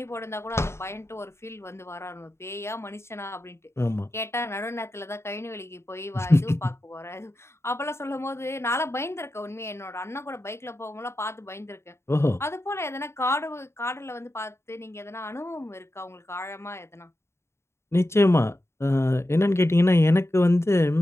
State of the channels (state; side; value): late; right; 0.13 ms